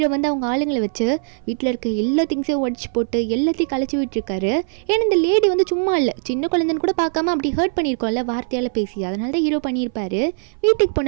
வந்து அவங்க ஆளுங்களை வச்சு வீட்டில் இருக்க எல்லா திங்ஸையும் உடச்சி போட்டு எல்லாத்தையும் கழிச்சு விட்டுருக்காரு. ஏன்னா இந்த லேடி வந்து சும்மா இல்லை, சின்ன குழந்தைன்னு கூட பார்க்காம அப்படி ஹர்ட் பண்ணியிருக்கோம்ல வார்த்தையால் பேசி, அதனால தான் ஹீரோ பண்ணியிருப்பாரு. வீட்டுக்கு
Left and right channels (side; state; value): left; silent; 58 dB below the other